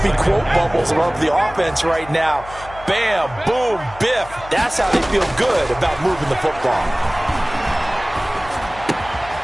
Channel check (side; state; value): left; noise; hum, 17 dB below the sound